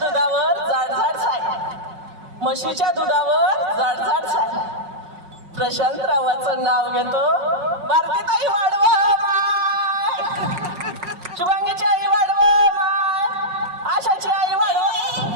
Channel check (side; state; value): left; late; 5.5 ms